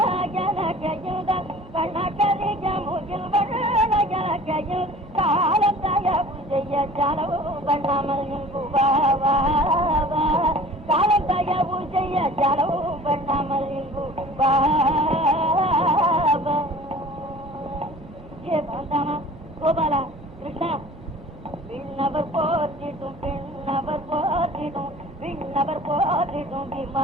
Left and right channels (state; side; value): normal; both; correlation 0.45